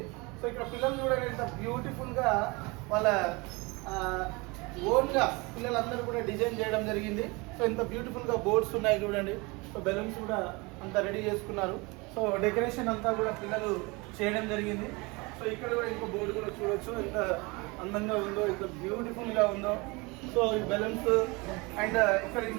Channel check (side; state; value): left; quieter; 26.2 dB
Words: సో ఇక్కడ పిల్లలు చూడండి ఎంత బ్యూటిఫుల్గా వాళ్ళ ఓన్గా పిల్లలందరూ కూడా డిజైన్ చేయడం జరిగింది. సో ఎంత బ్యూటిఫుల్గా బోర్డ్స్ ఉన్నాయి చూడండి. సో బెలూన్స్ కూడా అంతా రెడీ చేసుకున్నారు. సో డెకరేషన్ అంతా కూడా పిల్లలు చేయడం జరిగింది. సో ఇక్కడ కూడా ఇంకో బోర్డు కూడా చూడొచ్చు ఎంత అందంగా ఉందో, ఎంత బ్యూటిఫుల్గా ఉందో. సో ఈ బెలూన్స్ అండ్ ఇక్కడ